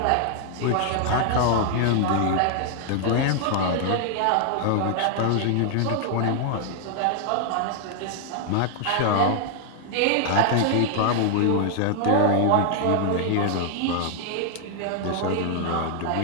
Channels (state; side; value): different; both; correlation 0.00